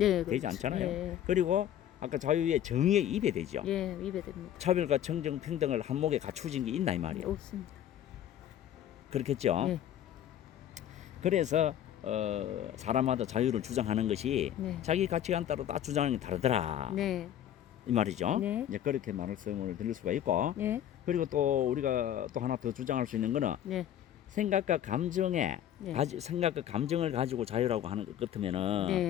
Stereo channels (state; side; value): quieter; right; 10.9 dB